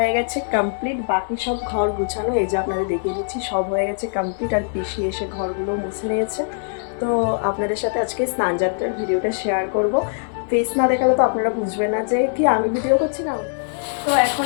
গেছে কমপ্লিট, বাকি সব ঘর গুছানো এই যে আপনাদের দেখিয়ে দিচ্ছি, সব হয়ে গেছে কমপ্লিট। আর পিসি এসে ঘরগুলো মুছে নিয়েছে। তো আপনাদের সাথে আজকে স্নান যাত্রার ভিডিওটা শেয়ার করব। ফেস না দেখালে তো আপনারা বুঝবেন না যে কি আমি ভিডিও করছি না। তো এখন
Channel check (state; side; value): silent; right; digital silence